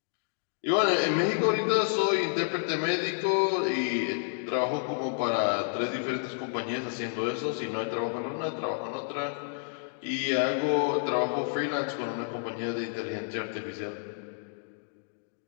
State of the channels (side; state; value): right; silent; digital silence